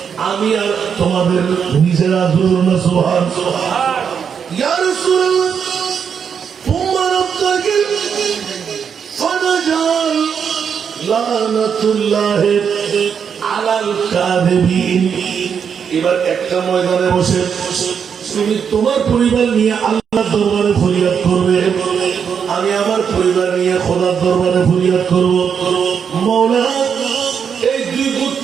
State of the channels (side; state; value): left; quieter; 7.1 dB